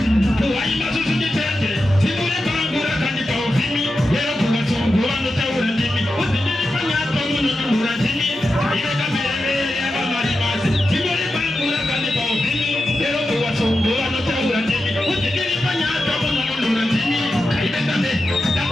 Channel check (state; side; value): normal; both; correlation 0.90